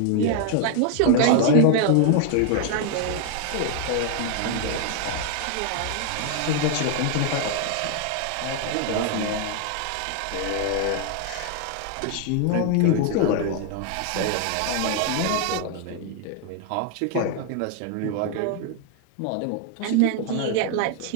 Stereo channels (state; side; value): different; both; correlation 0.00